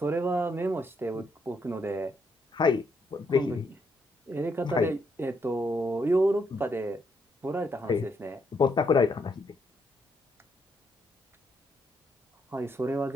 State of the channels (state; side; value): normal; both; correlation 0.76